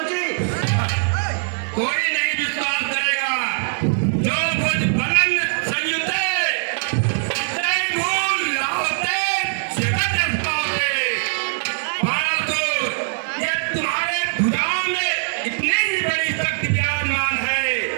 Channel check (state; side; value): silent; left; digital silence